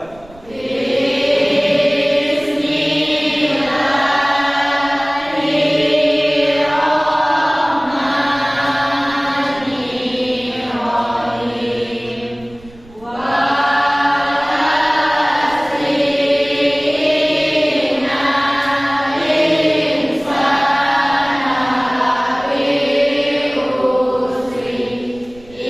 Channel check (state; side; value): noise; right; rumble, 24 dB below the sound